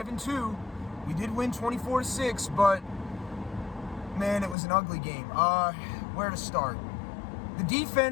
We did win 24-6, but man, it was an ugly game. Where to start? The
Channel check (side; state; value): right; drops out; at 4.5 s